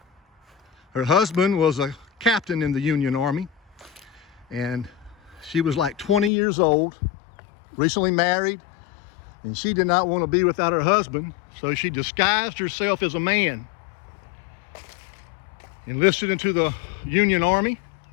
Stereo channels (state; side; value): drops out; right; at 6.3 s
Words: Her husband was a captain in the Union Army, and she was like 20 years old, recently married, and she did not want to be without her husband, so she disguised herself as a man, enlisted into the Union Army,